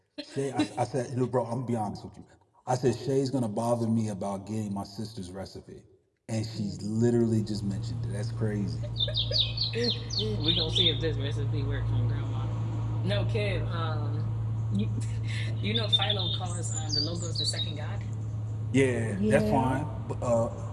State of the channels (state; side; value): identical; both; correlation 1.00